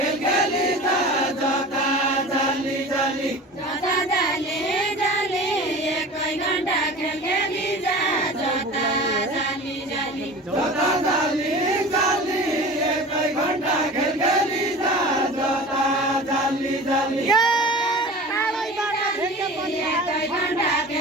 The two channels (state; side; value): normal; both; correlation 0.37